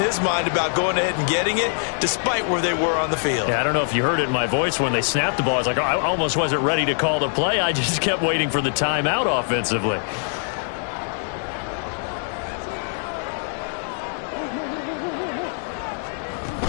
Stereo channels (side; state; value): right; silent; 63 dB below the other